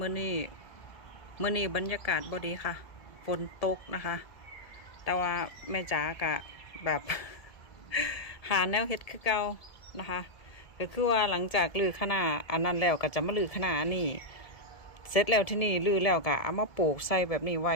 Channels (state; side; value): late; right; 1.7 ms